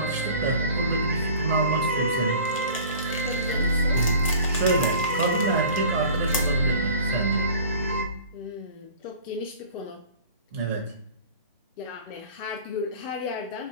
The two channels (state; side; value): inverted; both; correlation -0.43